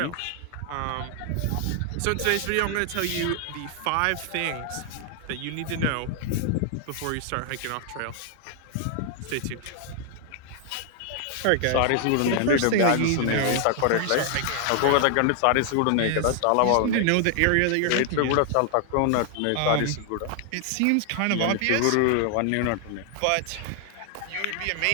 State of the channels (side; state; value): both; different; correlation 0.00